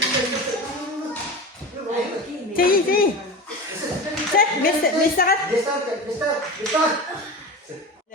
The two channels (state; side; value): normal; both; correlation 0.28